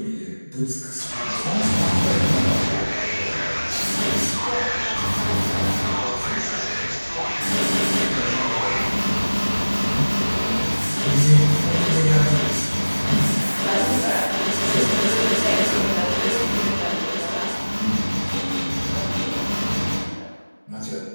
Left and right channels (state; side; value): inverted; both; correlation -1.00